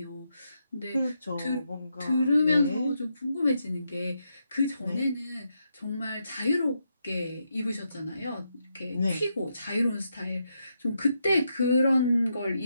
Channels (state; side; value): inverted; both; correlation -0.82